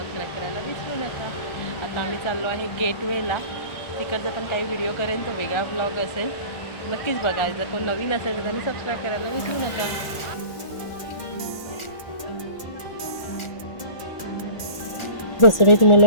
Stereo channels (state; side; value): late; right; 1.4 ms